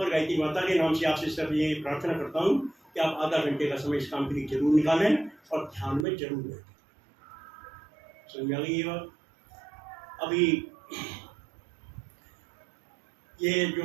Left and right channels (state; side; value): drops out; left; at 6.1 s